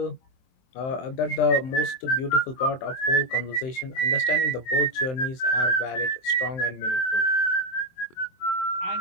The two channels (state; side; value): late; right; 23 ms